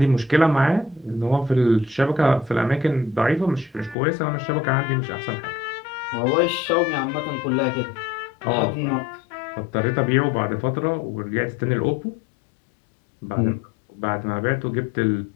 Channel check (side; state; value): right; drops out; at 4.0 s